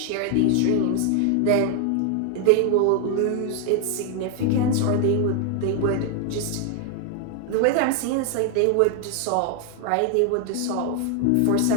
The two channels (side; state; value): both; different; correlation 0.00